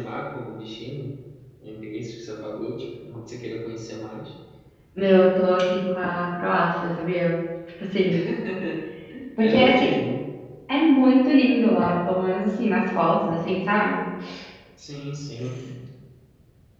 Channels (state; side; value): identical; both; correlation 1.00